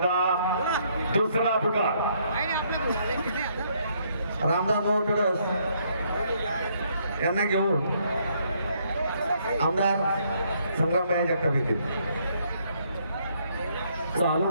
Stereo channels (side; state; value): both; inverted; correlation -0.70